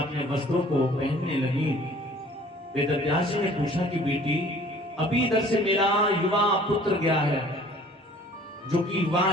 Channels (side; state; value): both; normal; correlation 0.52